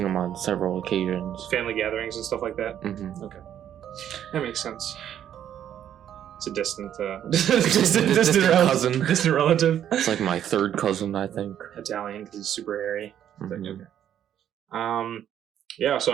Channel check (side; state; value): left; quieter; 10.2 dB